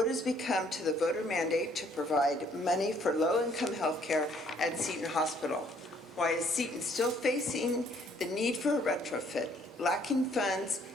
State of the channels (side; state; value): both; normal; correlation 0.64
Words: has become to the voter mandate to provide money for low-income health care at Seton Hospital? Why is Seton still facing the need for a retrofit, lacking funds,